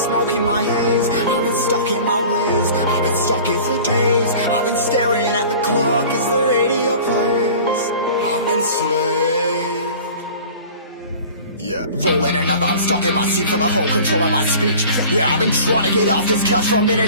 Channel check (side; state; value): both; inverted; correlation -0.42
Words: smoking my haze. I've been stuck in my ways, I've been stuck in for days. I've been staring at the clock as the radio plays. I'm enslaved. Yeah, rolling another, I'm stuck in my seat for the whole control of my speech. Yeah, I've been trying to get off this couch for a